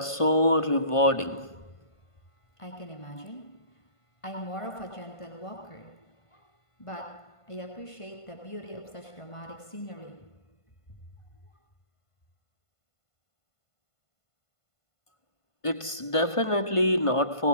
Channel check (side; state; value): right; late; 1.5 ms